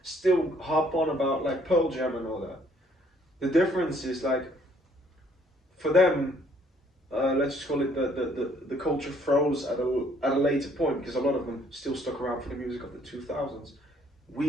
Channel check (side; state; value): both; normal; correlation 0.63